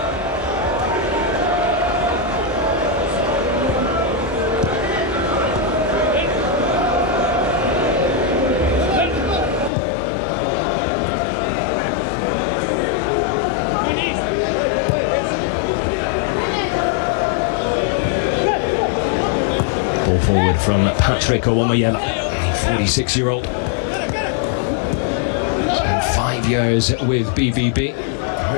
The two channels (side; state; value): right; drops out; at 9.7 s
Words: Ball forward from Patrick Owomayela, 46-year-old. Spent 5 years with BVB, a